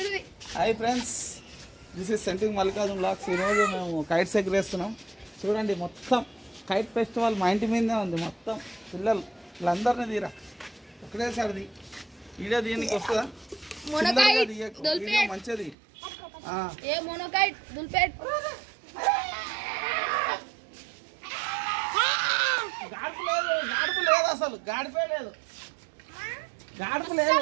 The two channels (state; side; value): drops out; left; at 15.8 s